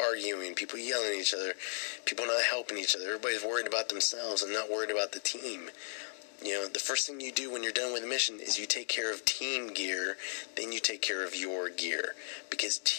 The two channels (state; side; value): silent; right; digital silence